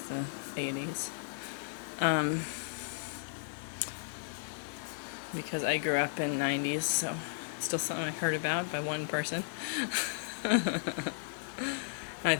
the 80s. Because I grew up in 90s, so it's still something I've heard about by one person. I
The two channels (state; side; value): silent; right; digital silence